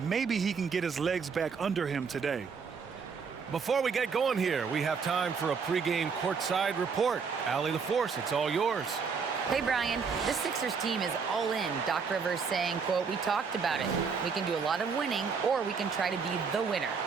he can get his legs back under him today. Before we get going here, we have time for a pregame courtside report. Allie LaForce, it's all yours. Hey, Brian. This Sixers team is all in. Doc Rivers saying, quote, "We talked about it. We can do a lot of winning, or we can try to be the winner.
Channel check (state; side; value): quieter; left; 5.7 dB